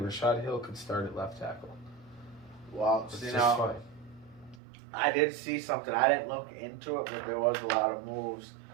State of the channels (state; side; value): drops out; left; at 4.6 s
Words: Rashad Hill could start at left tackle. Well, it's just fine. I did see something. I didn't look into it, but there was a lot of moves